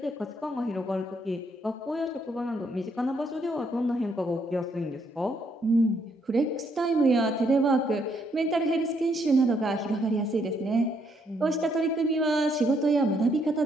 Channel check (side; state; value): both; normal; correlation 0.72